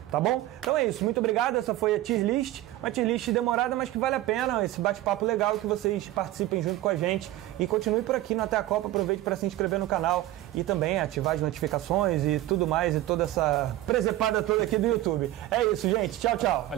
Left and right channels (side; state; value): left; quieter; 15.5 dB